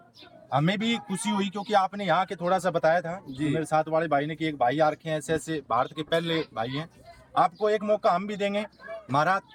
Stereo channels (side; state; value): both; identical; correlation 1.00